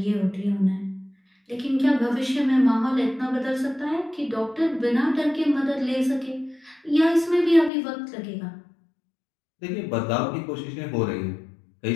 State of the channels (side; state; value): right; drops out; at 7.7 s